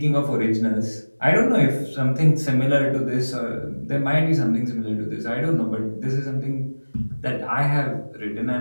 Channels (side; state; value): both; inverted; correlation -1.00